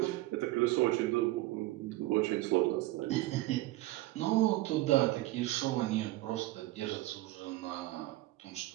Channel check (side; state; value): left; quieter; 17.6 dB